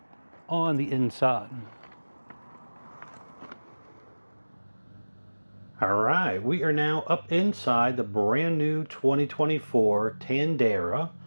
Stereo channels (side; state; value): both; inverted; correlation -1.00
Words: on the inside. All right, we are now up inside the brand new 2024 Tandara